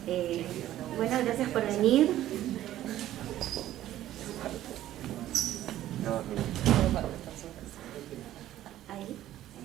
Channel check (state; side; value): quieter; left; 13.3 dB